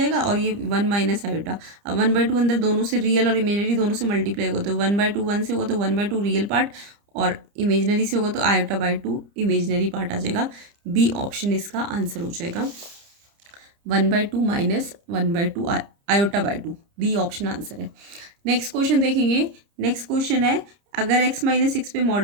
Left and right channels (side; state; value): left; late; 30 ms